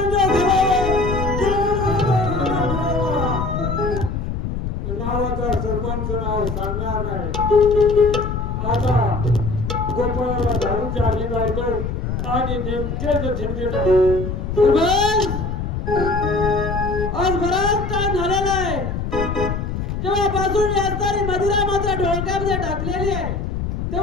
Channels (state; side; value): noise; left; rumble, 3 dB below the sound